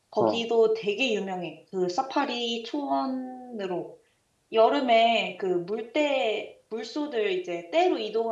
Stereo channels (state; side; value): identical; both; correlation 1.00